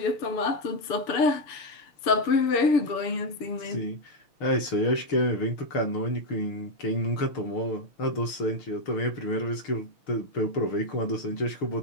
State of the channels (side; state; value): right; late; 6.6 ms